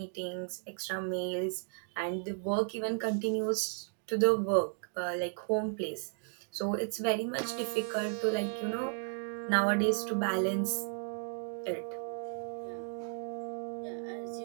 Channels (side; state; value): left; silent; 55 dB below the other